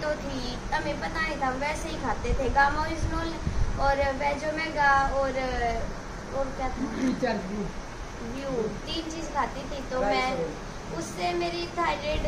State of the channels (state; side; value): identical; both; correlation 1.00